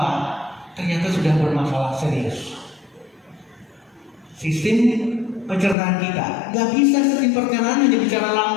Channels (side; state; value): right; drops out; at 5.8 s